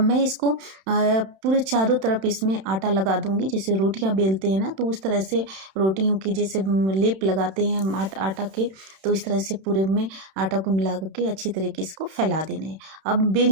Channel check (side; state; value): left; late; 31 ms